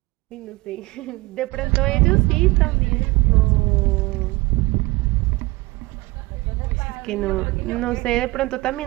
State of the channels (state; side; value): quieter; left; 22.1 dB